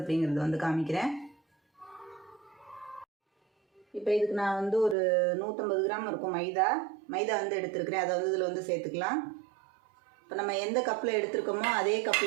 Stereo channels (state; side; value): drops out; left; at 5.0 s